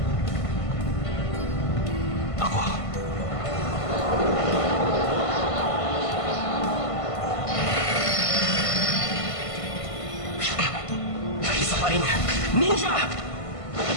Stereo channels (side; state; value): right; late; 1.5 ms